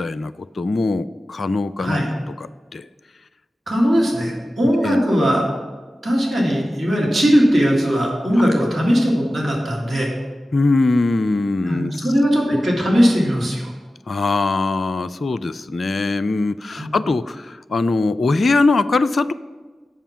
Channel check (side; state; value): both; normal; correlation 0.94